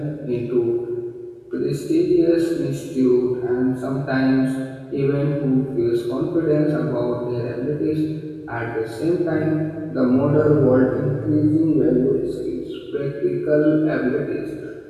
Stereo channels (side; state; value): both; identical; correlation 1.00